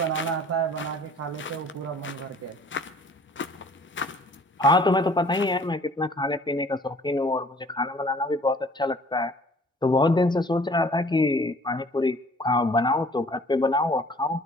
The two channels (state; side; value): normal; both; correlation 0.53